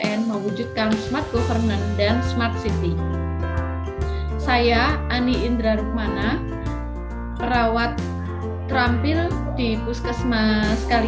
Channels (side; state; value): both; identical; correlation 1.00